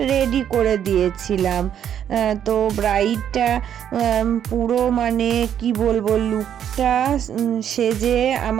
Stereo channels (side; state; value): left; quieter; 9.5 dB